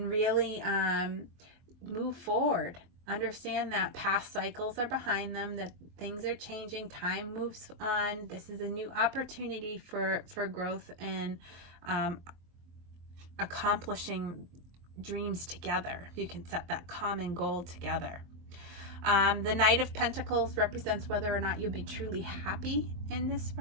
really move forward. Understand that past cycles are behind them, that things are changing, time moves on. This is a new opportunity for growth and accomplishing dreams together. You can set that common goal together. The Knight of Pentacles represents whether or not you'll be truly happy in this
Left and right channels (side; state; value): left; late; 23 ms